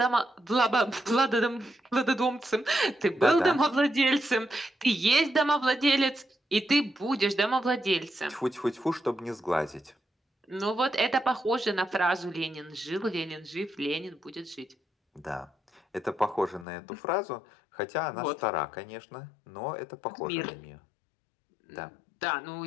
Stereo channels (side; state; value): right; drops out; at 16.7 s